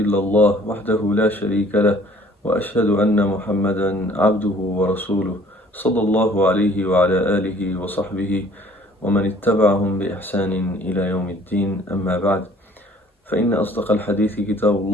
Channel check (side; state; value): both; normal; correlation 0.55